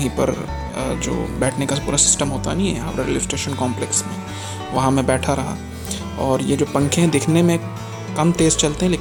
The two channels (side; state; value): both; identical; correlation 1.00